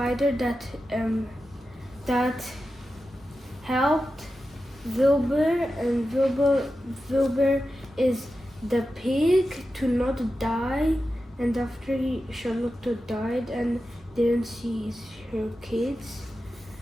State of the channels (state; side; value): normal; both; correlation 0.91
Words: that helped Wilbur, and Wilbur is the pig to not die. And after Charlotte died and didn't see her kids.